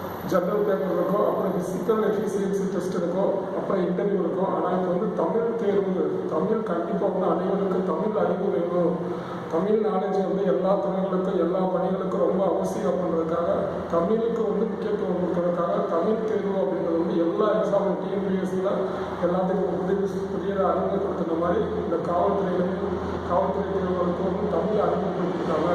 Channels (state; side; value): identical; both; correlation 1.00